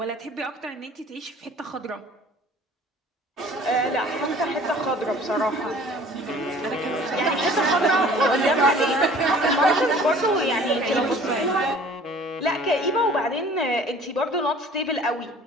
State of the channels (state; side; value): normal; both; correlation 0.49